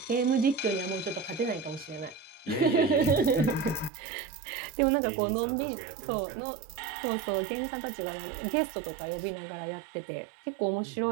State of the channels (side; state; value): left; drops out; at 3.9 s